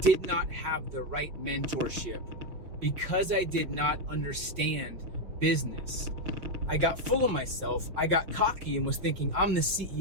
did not have the right mentorship, because I did not understand business, I got full of myself. I got cocky and was thinking, I'm the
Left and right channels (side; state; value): left; late; 5.6 ms